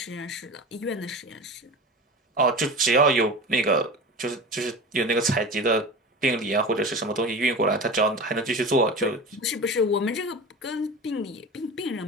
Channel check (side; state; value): both; normal; correlation 0.31